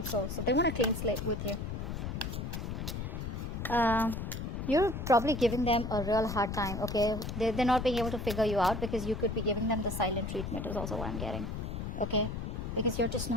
So they want a clean slate with you. You're probably giving them a real hard time, okay? They're not being able to figure you out because you could be giving them the silent treatment is also what I'm getting, okay? Because you're just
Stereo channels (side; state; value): left; noise; rumble, 4 dB below the sound